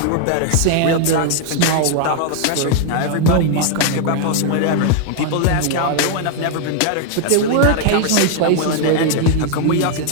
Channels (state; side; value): different; both; correlation 0.00